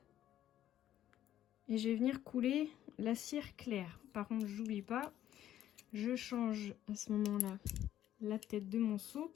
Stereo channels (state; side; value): quieter; right; 12.0 dB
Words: Et je vais venir couler la cire claire. Par contre, j'oublie pas, je change à ce moment-là la tête de mon seau